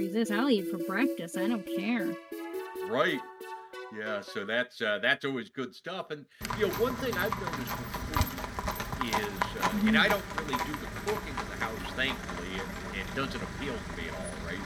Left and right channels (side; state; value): both; identical; correlation 1.00